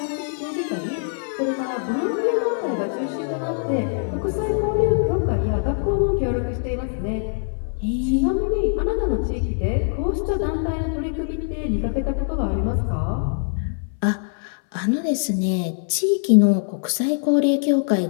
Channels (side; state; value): right; silent; 63 dB below the other